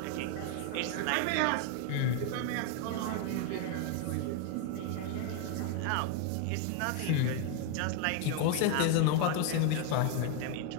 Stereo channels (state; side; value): different; both; correlation 0.01